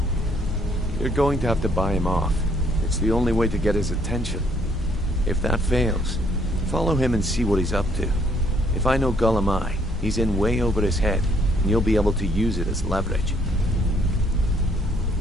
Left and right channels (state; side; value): normal; both; correlation 0.66